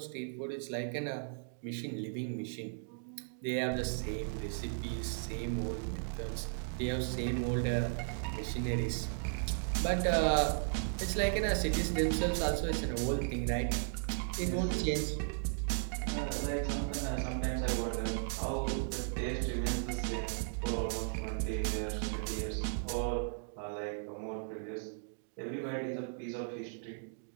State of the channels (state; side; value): silent; left; digital silence